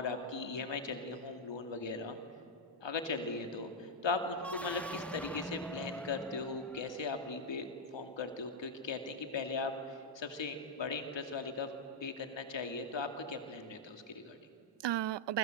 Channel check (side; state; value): both; normal; correlation -0.02